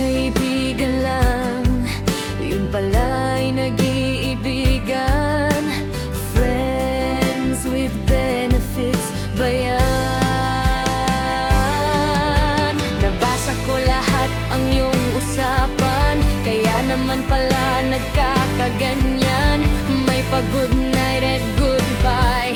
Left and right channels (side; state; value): both; identical; correlation 1.00